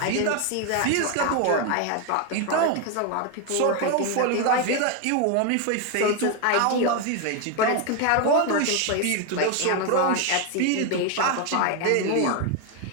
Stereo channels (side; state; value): both; different; correlation 0.01